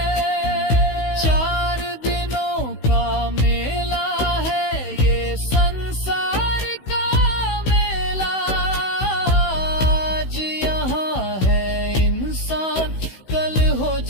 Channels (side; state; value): right; late; 16 ms